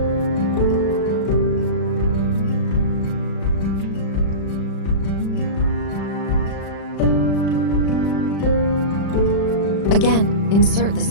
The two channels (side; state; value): right; late; 36 ms